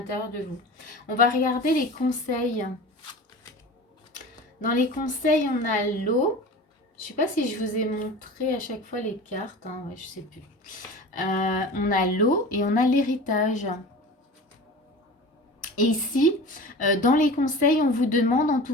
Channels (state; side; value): normal; both; correlation 0.36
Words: de vous. On va regarder les conseils. Dans les conseils, on a l'eau. Je ne sais pas si je vous ai montré à chaque fois les cartes. Hein, ouais, je ne sais plus. On a l'eau et on a l'héritage. Et ici, dans les conseils, on vous demande en